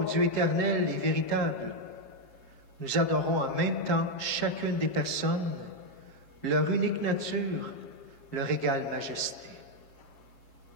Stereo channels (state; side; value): late; right; 7.5 ms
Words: Dieu éternel et véritable, nous adorons en même temps chacune des personnes, leur unique nature, leur égale majesté.